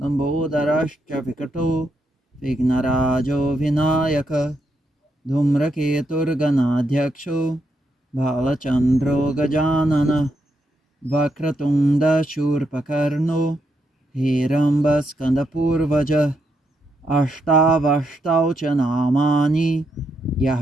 लम्बोदरश्च विकटो विघ्नराजो विनायकः धूम्रकेतुर्गणाध्यक्षो भालचन्द्रो गजाननः वक्रतुण्डशूर्पकर्णो हेरम्बस्कन्दपूर्वजः अष्टावष्टौ च नामानि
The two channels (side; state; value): both; normal; correlation 0.80